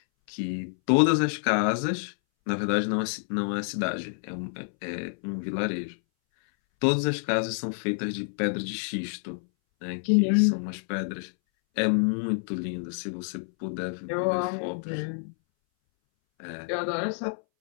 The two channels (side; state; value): right; silent; 59 dB below the other